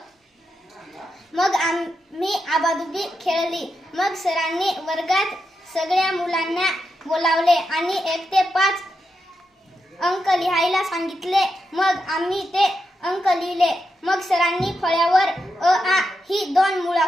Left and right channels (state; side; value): normal; both; correlation 0.86